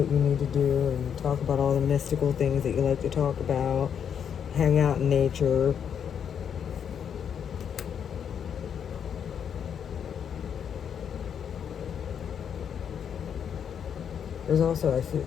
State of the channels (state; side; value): quieter; right; 8.0 dB